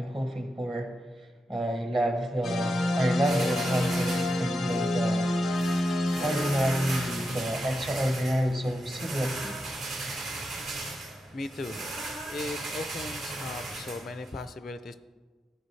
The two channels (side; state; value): both; normal; correlation 0.87